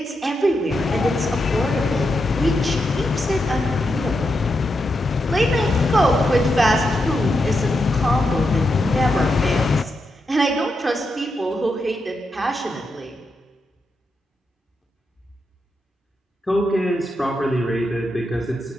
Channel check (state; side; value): normal; both; correlation 0.85